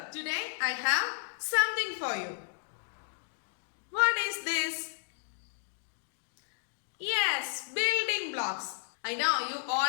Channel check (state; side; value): silent; right; digital silence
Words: Today, I have something for you. What is this? Yes, building blocks. I know you